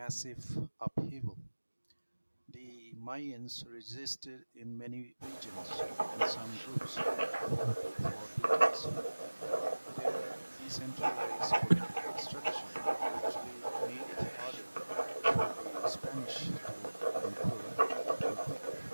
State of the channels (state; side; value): inverted; both; correlation -1.00